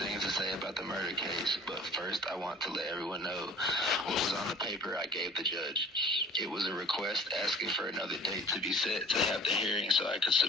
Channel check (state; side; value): normal; both; correlation 0.48